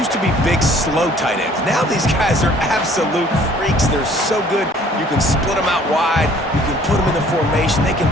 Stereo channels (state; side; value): normal; both; correlation 0.56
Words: to be big, slow tight ends. Now these guys are absolute freaks. They're so good. You can split them out wide. You can put them in the formation. They can